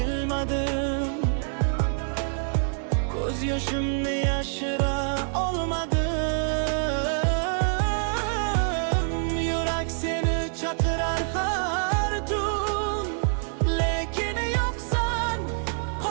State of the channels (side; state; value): left; silent; digital silence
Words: ko'z yoshimni yashira olmadim. Yurak seni chaqirar har tun, lekin yo'qsan,